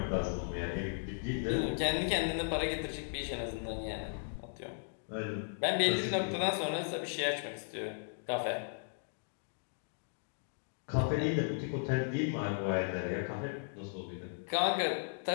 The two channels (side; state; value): right; silent; digital silence